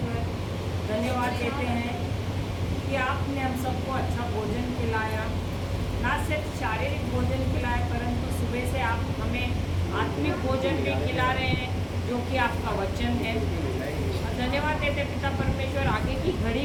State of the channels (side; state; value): both; identical; correlation 1.00